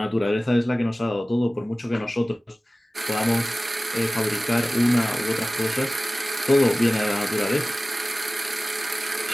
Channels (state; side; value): normal; both; correlation 0.97